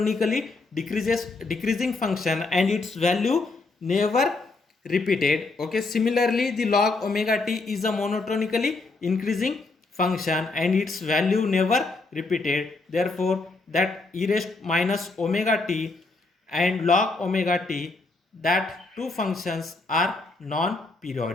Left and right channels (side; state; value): right; quieter; 3.5 dB